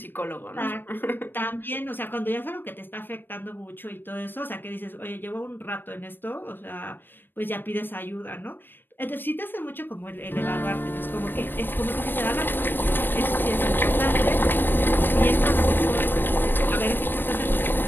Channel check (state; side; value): late; right; 0.095 ms